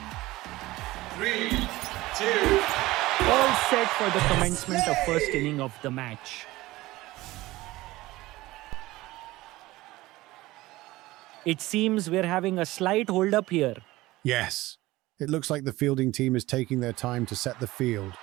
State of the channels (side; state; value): left; quieter; 18.5 dB